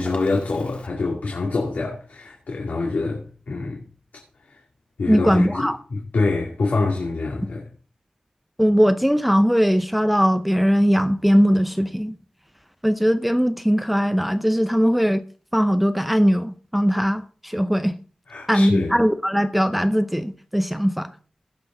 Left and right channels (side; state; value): both; normal; correlation 0.98